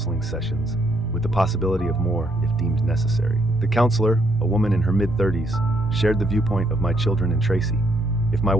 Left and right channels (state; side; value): normal; both; correlation 0.73